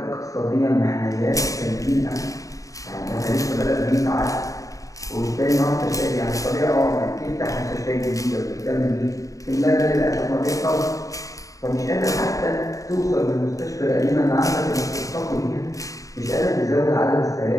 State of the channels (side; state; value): right; late; 0.16 ms